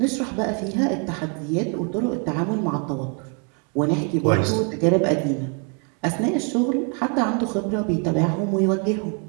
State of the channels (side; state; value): left; quieter; 37.6 dB